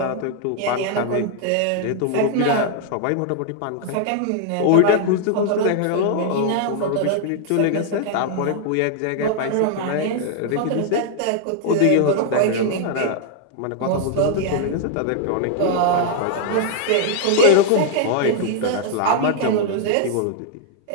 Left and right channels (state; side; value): different; both; correlation 0.00